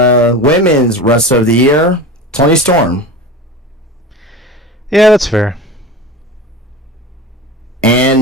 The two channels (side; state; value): both; normal; correlation 0.30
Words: Wrestler of the Year, Toni Storm. Yeah, that's fair.